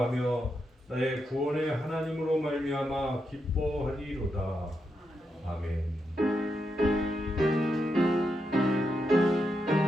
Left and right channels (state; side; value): normal; both; correlation 0.84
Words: 나의 구원의 하나님으로 말미암아 기뻐하리로다. 아멘.